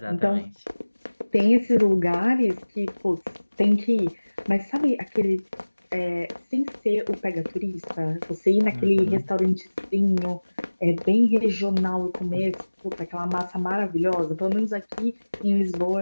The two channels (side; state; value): both; inverted; correlation -1.00